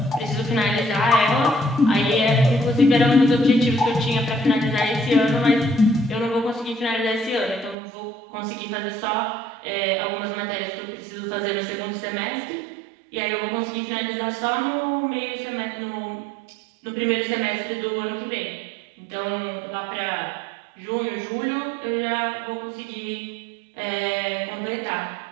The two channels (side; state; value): left; drops out; at 7.8 s